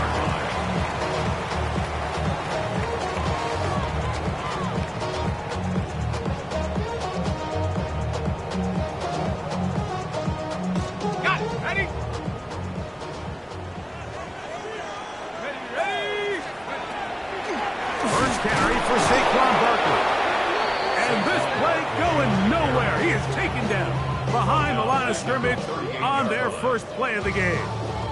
Scrimmage on their first play of the game.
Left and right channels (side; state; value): both; identical; correlation 1.00